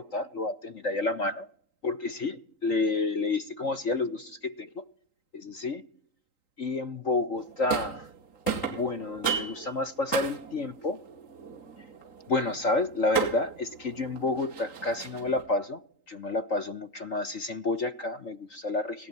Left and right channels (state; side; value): late; right; 3.8 ms